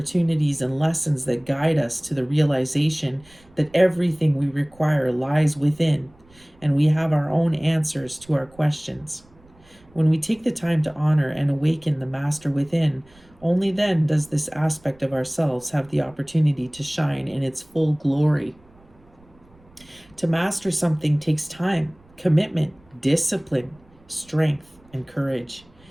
and lessons that guide us to the realization that everything we require lies within, and we have our own answers to our questions. When we take the time to honor and awaken the master within, only then does this aspect of ourselves have the opportunity to shine in its full glory. To master something takes time, commitment, discipline, strength, and courage.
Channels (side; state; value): right; noise; rumble, 29 dB below the sound